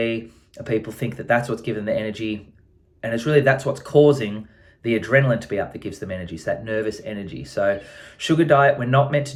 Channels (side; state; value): both; identical; correlation 1.00